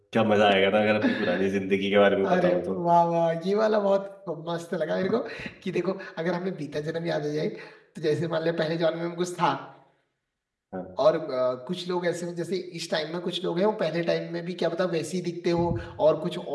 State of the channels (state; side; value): identical; both; correlation 1.00